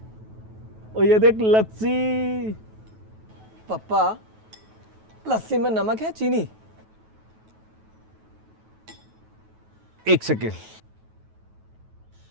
और ये देख लस्सी। पापा, लस्सी में नमक है चीनी? एक सेकेंड,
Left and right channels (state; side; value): late; left; 9.2 ms